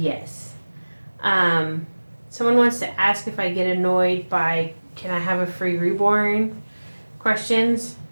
Someone wants to ask if I get annoyed by can I have a free reborn questions,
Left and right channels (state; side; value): inverted; both; correlation -1.00